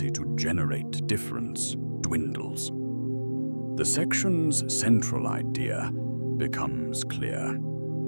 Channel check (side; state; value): both; inverted; correlation -1.00